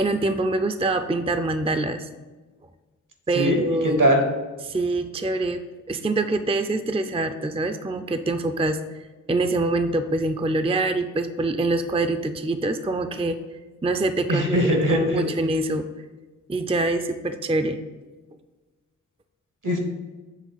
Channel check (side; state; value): both; normal; correlation 0.44